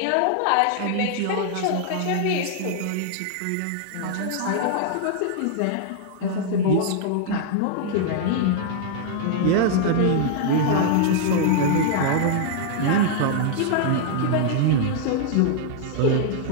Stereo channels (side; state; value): both; different; correlation -0.01